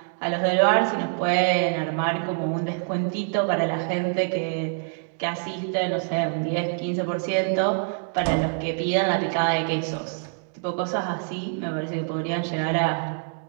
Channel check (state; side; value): silent; left; 61 dB below the other